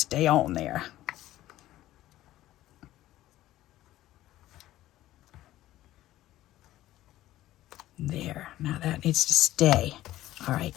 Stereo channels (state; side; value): quieter; right; 14.8 dB